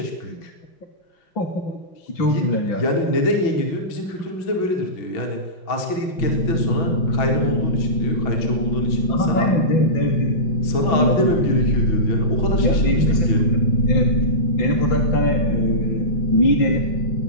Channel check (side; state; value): right; late; 6.1 ms